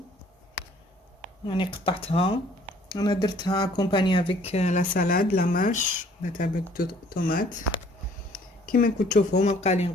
يعني قطعتها، انا درتها كومباني افيك لا سالاد لا ماش لا تاع طوماط. كيما راكم تشوفوا ما بقى لي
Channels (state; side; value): normal; both; correlation 0.58